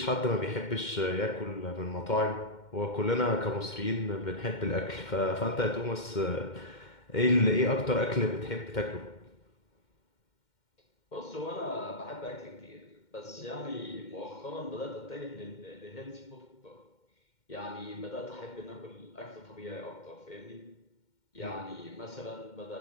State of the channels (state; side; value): late; right; 2.1 ms